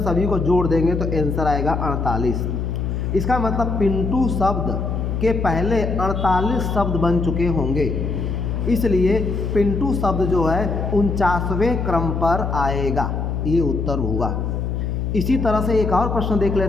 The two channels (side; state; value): left; noise; hum, 2 dB below the sound